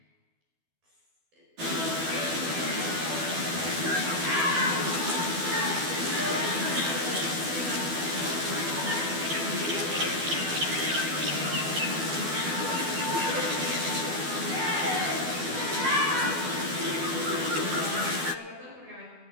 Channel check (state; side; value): late; left; 12 ms